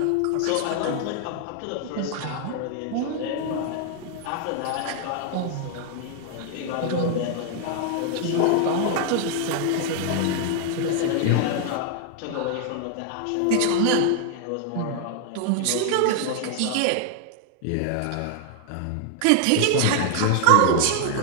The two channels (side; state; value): both; different; correlation 0.00